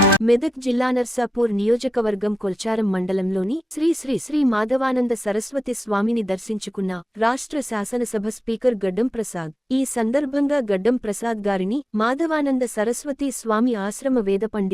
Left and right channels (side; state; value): both; normal; correlation 0.91